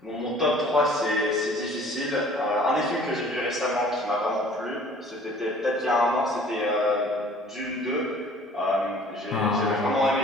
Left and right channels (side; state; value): both; normal; correlation 0.52